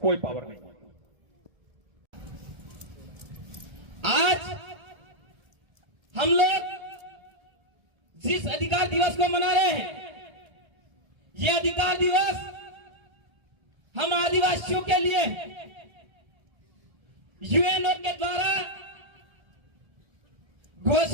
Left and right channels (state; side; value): late; left; 1.7 ms